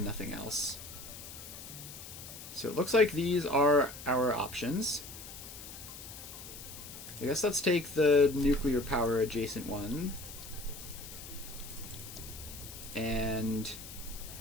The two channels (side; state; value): left; noise; hiss, 13 dB below the sound